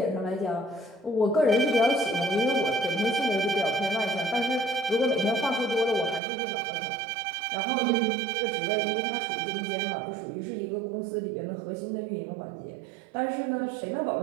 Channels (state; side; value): drops out; left; at 6.2 s